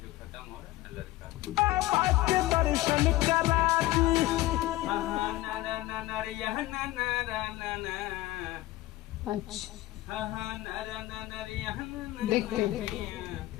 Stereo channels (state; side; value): quieter; right; 17.3 dB